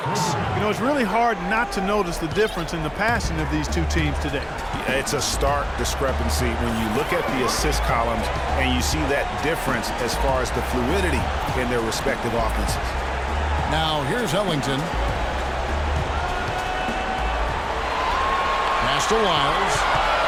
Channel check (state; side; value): identical; both; correlation 1.00